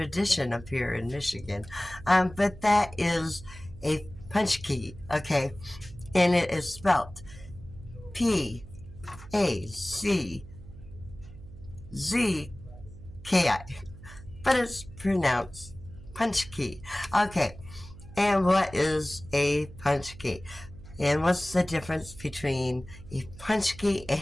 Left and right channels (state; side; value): noise; right; hum, 17 dB below the sound